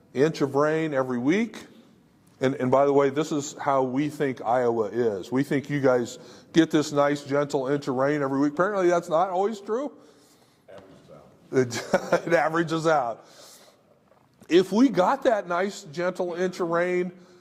inch of rain every week, and by the way, this is how we think Iowa is. We think you guys get this nice, gentle inch of rain every week. Apparently that's not always true. It averages out. If we got that nice, gentle inch of rain,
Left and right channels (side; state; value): both; identical; correlation 1.00